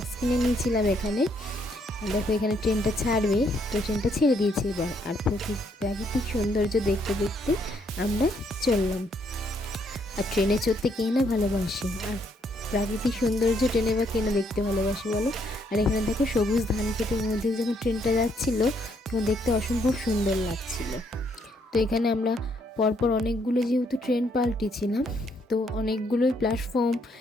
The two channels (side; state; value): both; normal; correlation 0.72